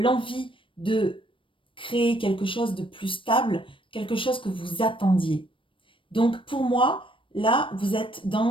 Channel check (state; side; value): late; right; 0.25 ms